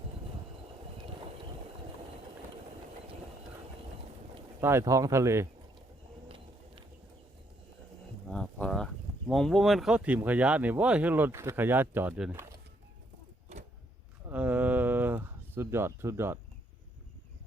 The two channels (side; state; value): both; normal; correlation 0.72